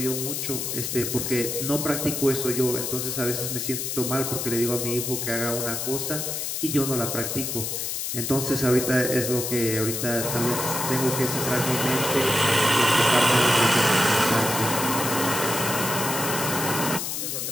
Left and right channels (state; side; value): noise; left; hiss, 3 dB below the sound